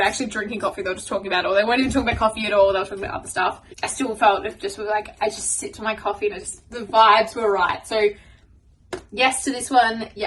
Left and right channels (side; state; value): both; identical; correlation 1.00